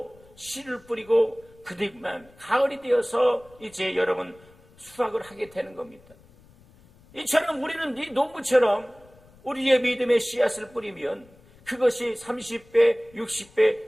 씨를 뿌리고 그뒤만 가을이 되어서 이제 여러분 수확을 하게 되는 겁니다. 이처럼 우리는 이 농부처럼 우리의 믿음의 씨앗을 뿌리면 그것이 30배,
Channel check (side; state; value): left; noise; rumble, 27 dB below the sound